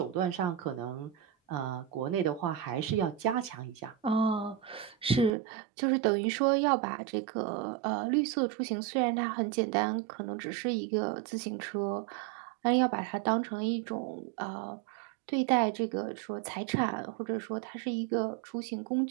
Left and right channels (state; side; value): drops out; left; at 5.3 s